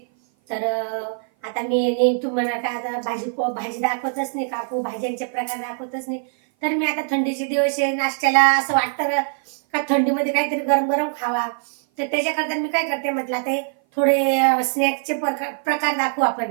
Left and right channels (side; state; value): left; silent; 56 dB below the other